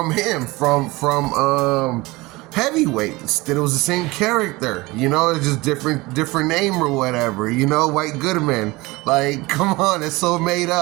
him, from Heavyweights. That it was the same character, you know, it's just different name or whatever, you know, White Goodman. Like, come on, it's so made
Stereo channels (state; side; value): quieter; left; 21.9 dB